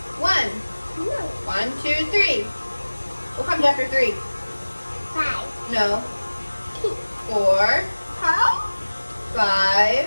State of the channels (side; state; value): both; inverted; correlation -1.00